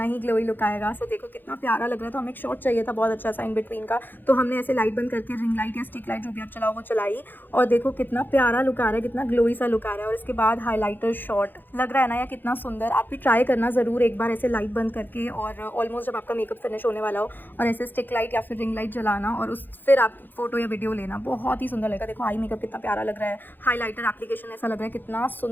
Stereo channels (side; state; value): right; late; 0.091 ms